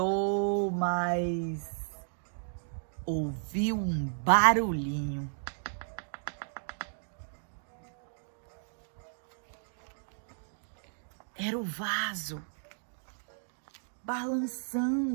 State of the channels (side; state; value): left; silent; digital silence